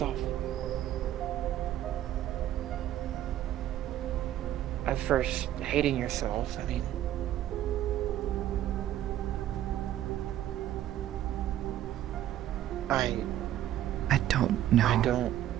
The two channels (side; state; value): left; quieter; 12.5 dB